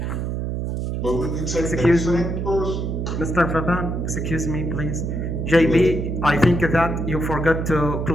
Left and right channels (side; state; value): right; noise; hum, 2 dB below the sound